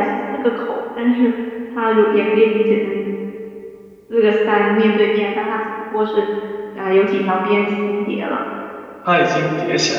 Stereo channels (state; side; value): identical; both; correlation 1.00